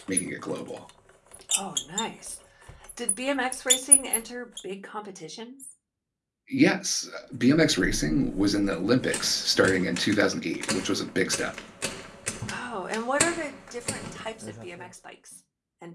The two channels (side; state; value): both; identical; correlation 1.00